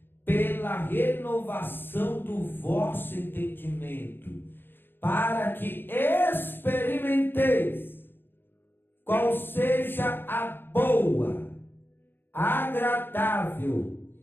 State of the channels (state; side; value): late; right; 0.10 ms